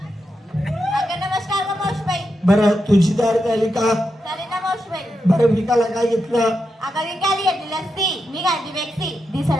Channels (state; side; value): normal; both; correlation 0.86